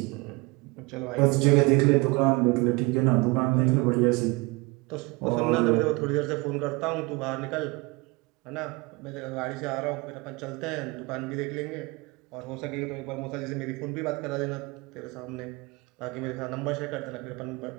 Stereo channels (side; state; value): left; quieter; 25.6 dB